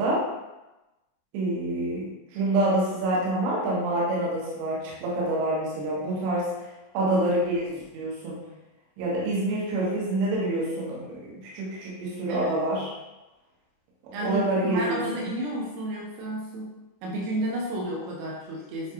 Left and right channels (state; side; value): late; left; 27 ms